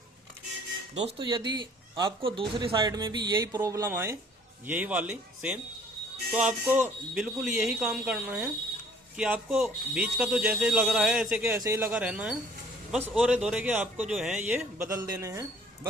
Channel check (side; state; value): both; normal; correlation 0.56